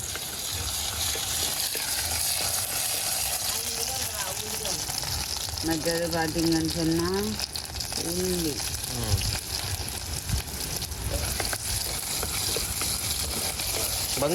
மற்றது பார்த்தீங்கன்னு சொன்னால் உள்ளி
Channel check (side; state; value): both; identical; correlation 1.00